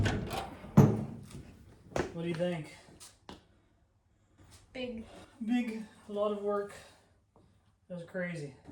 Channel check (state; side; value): identical; both; correlation 1.00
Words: What do you think? Big. Big, a lot of work. That was crazy.